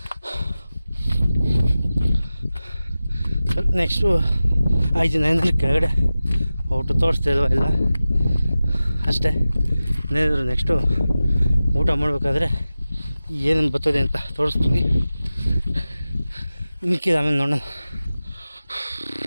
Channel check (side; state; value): both; inverted; correlation -0.95